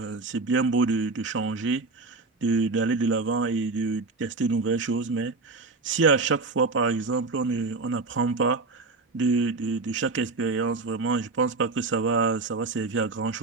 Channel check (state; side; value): quieter; left; 3.8 dB